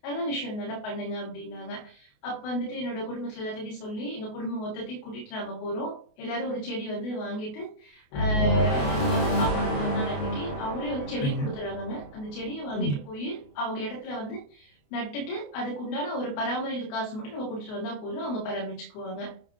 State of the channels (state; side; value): late; right; 28 ms